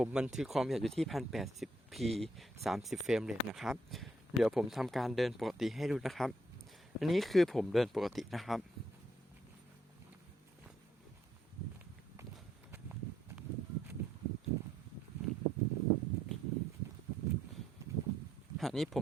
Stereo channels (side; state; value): both; normal; correlation 0.72